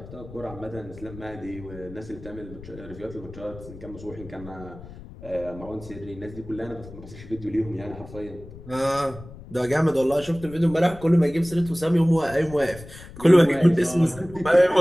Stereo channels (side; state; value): left; noise; rumble, 16 dB below the sound